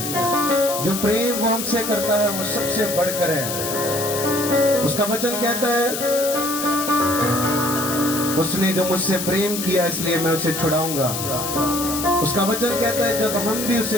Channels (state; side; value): noise; left; hiss, 5 dB below the sound